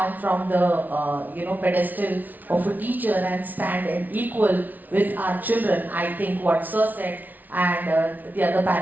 from the pedestal of a teacher and stand and equal with our children, I think what Sir said and the other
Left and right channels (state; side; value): late; left; 0.080 ms